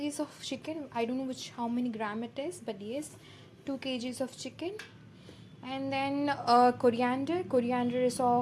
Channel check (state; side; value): identical; both; correlation 1.00